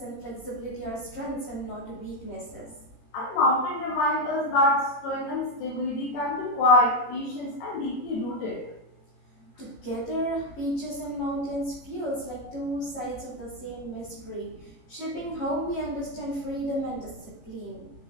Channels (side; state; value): right; late; 18 ms